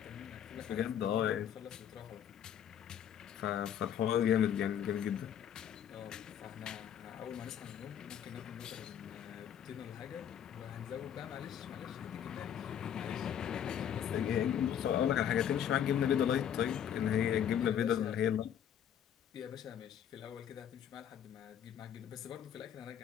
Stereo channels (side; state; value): right; quieter; 9.3 dB